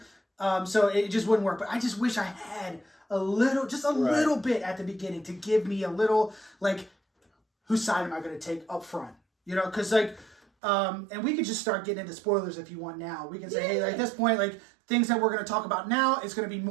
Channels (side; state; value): left; drops out; at 10.4 s